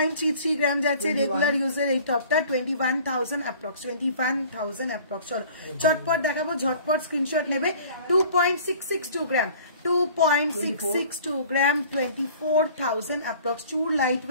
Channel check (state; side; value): inverted; both; correlation -0.49